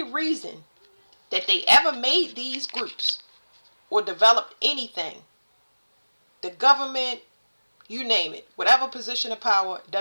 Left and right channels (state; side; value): inverted; both; correlation -1.00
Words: reason that they ever made these groups or developed anything, the government, you name it, whatever position of power,